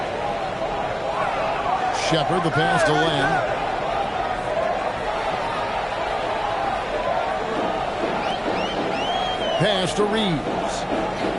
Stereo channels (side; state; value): both; identical; correlation 1.00